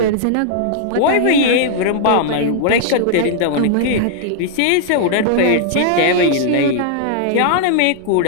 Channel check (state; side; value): different; both; correlation -0.01